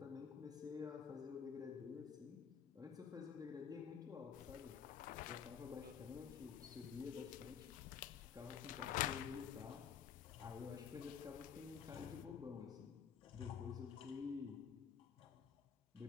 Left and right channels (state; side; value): quieter; right; 7.7 dB